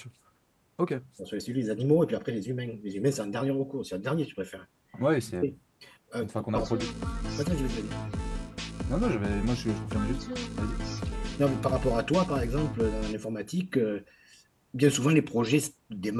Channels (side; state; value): both; identical; correlation 1.00